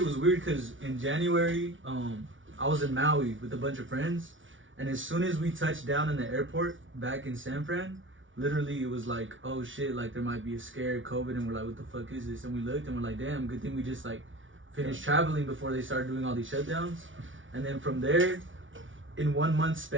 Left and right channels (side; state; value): left; late; 0.56 ms